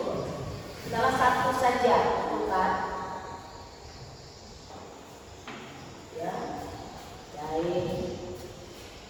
Salah satu saja tentukan. Ya, baik.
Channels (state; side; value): identical; both; correlation 1.00